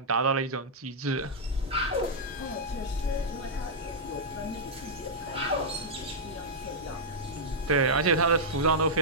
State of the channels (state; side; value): normal; both; correlation -0.08